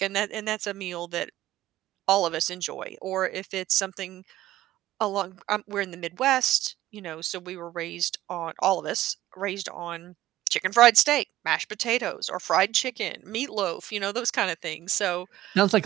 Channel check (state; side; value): quieter; left; 14.8 dB